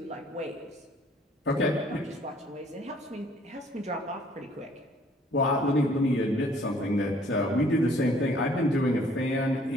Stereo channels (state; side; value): normal; both; correlation 0.59